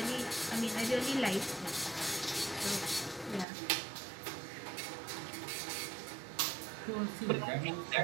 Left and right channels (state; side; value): drops out; left; at 3.5 s